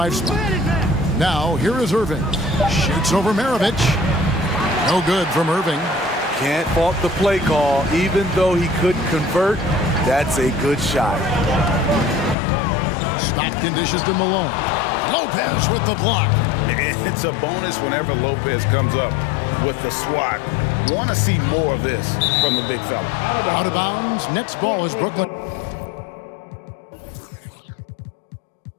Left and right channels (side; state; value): right; drops out; at 12.4 s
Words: spot. Now, here is Irving. Shoots over Maravich. No good from Irving. Can't fault the play call. Even though he couldn't convert, that's a good shot. Stockton dishes to Malone. Lopez with the block. It's a bonus whenever Lopez comes up with the swat. Want to see more of this from the big fella. Out of bounds. Nets ball is Brooklyn.